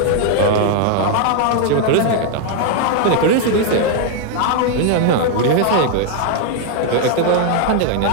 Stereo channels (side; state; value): both; different; correlation 0.00